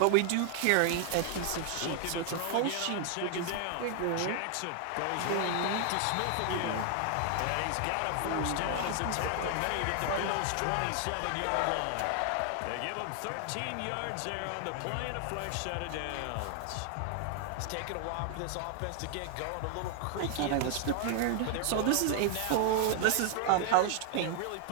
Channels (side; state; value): both; different; correlation 0.00